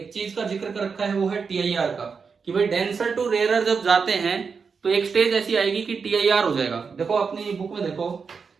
चीज का जिक्र कर रखा है वो है TIR का, कि भाई डेंसर टू रेयरर जब जाते हैं तो एक स्टेज ऐसी आएगी कि TIR हो जाएगा। देखो अपनी बुक में देखो,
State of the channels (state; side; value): quieter; left; 5.5 dB